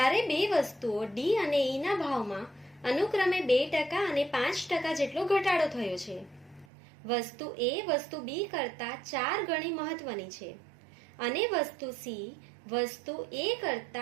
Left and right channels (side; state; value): left; drops out; at 6.7 s